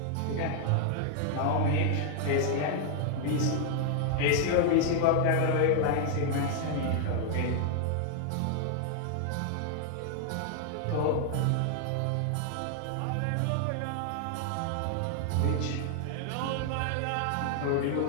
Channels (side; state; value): both; different; correlation 0.00